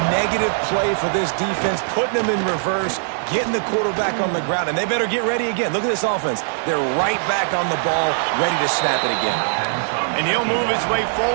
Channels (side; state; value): left; silent; digital silence